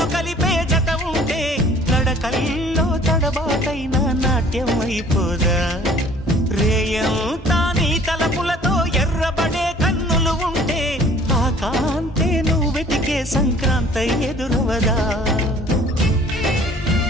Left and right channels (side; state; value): both; normal; correlation 0.53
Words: కలిపే జత ఉంటే నడకల్లో తడబాటైన నాట్యం అయిపోదా రేయంతా నీ తలపులతో ఎర్రబడే కన్నులు ఉంటే ఆ కాంతే నువ్వు వెతికే సంక్రాంతి ఎదురవదా